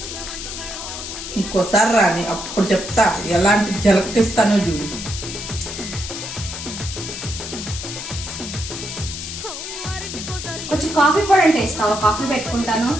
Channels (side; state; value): left; noise; hiss, 8 dB below the sound